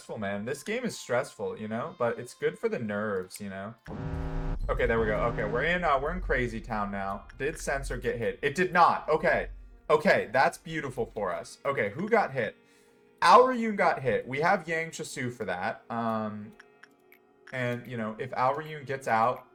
man. This game is stressful, but it's good for the nerves, Okay, there we go. Okay, we're in Crazy Town now. Did Censored get hit? It did not. Okay, that's beautiful for us. Okay, who got hit? Aoryun got hit. We have Yang Chasu for that. And if Aoryun gets out,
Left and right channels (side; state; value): both; identical; correlation 1.00